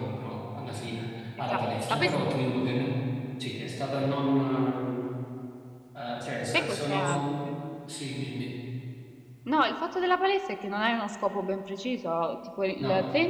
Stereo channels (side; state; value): both; identical; correlation 1.00